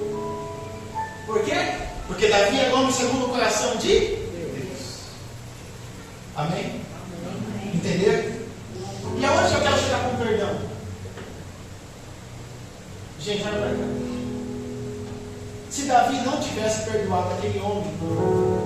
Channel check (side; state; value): both; identical; correlation 1.00